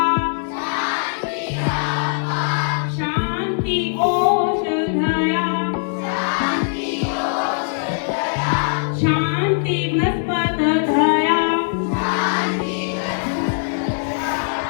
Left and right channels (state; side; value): silent; right; digital silence